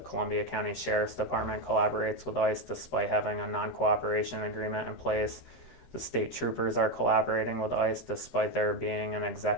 County Sheriff's Department collaborates with ICE despite having a non-cooperation agreement in place. The state troopers are collaborating with ICE despite there being an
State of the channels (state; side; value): late; right; 13 ms